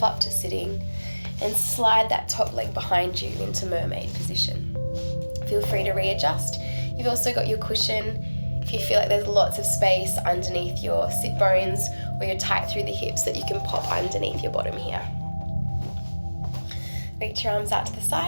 up to sitting and slide that top leg behind you into mermaid position. Feel free to readjust. You've also got your cushion. If you feel like there's lots of space underneath your sit bones or you're tight through the hips, that you can pop underneath your bottom here. Reach your arms out to the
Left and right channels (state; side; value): inverted; both; correlation -1.00